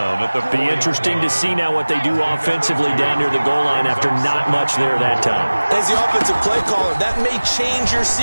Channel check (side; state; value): both; inverted; correlation -1.00